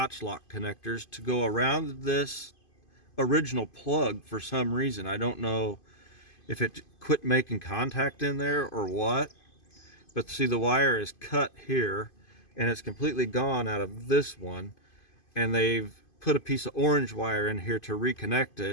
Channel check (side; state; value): right; late; 2.5 ms